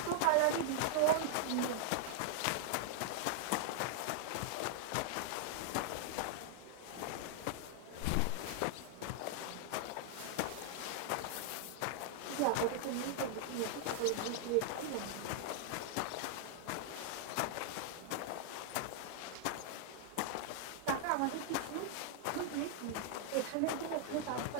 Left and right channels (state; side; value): different; both; correlation -0.01